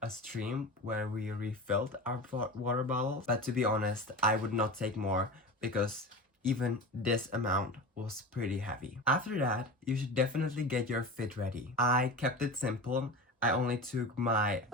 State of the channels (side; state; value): both; normal; correlation 0.34